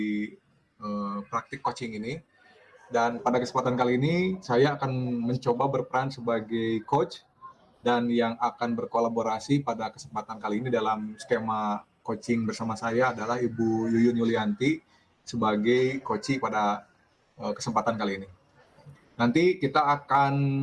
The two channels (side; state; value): both; identical; correlation 1.00